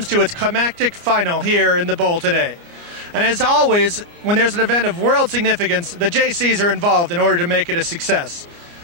to its climactic final here in the bowl today. And as always, when there's an event of world significance, the JCs are involved in order to make it a success.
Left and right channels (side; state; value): left; late; 29 ms